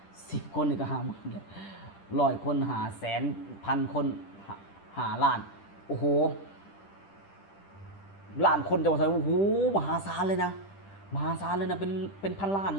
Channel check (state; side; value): late; right; 10 ms